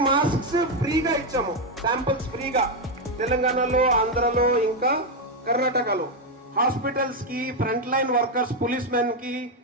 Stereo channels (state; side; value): normal; both; correlation 0.04